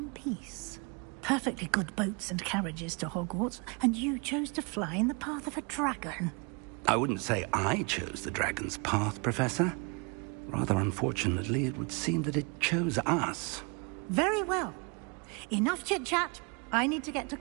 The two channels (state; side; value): quieter; left; 32.9 dB